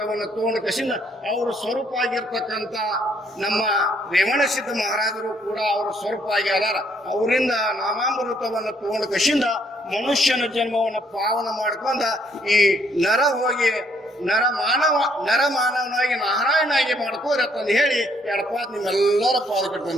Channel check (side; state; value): both; normal; correlation 0.68